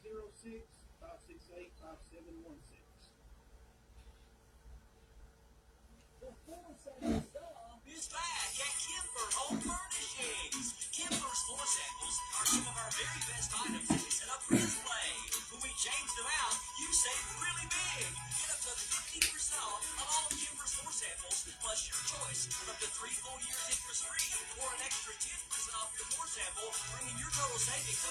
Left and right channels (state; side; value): identical; both; correlation 1.00